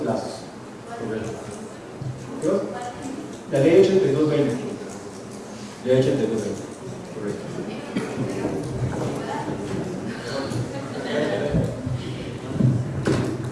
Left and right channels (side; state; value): both; identical; correlation 1.00